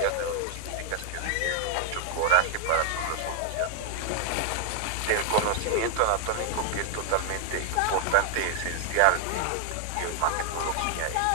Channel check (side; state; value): both; different; correlation 0.00